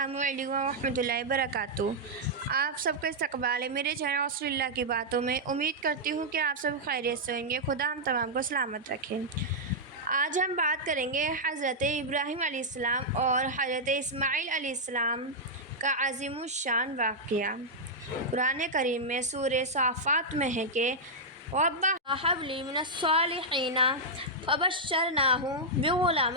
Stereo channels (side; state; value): both; normal; correlation -0.06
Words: علیکم ورحمۃ اللہ وبرکاتہ۔ آپ سب کا استقبال ہے میرے چینل رسول اللہ کی باتوں میں۔ امید کرتی ہوں کہ آپ سب خیریت سے ہوں گے۔ خدا ہم تمام کو سلامت رکھے۔ آج ہم بات کریں گے حضرت ابراہیم علیہ السلام اور حضرت اسماعیل علیہ السلام کا عظیم الشان واقعہ۔ قرآن کریم میں سورہ صافات میں ہے کہ رَبَّ هَبْ لِي مِنَ الصَّالِحِينَ فَبَشَّرْنَاهُ بِغُلَامٍ